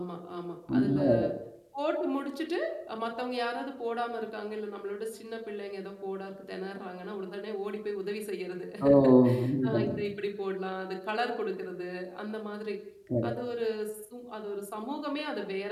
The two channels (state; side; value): identical; both; correlation 1.00